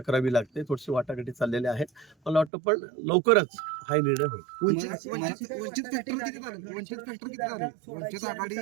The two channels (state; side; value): drops out; left; at 2.5 s